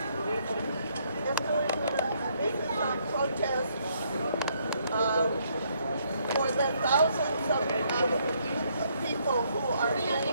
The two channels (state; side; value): inverted; both; correlation -0.70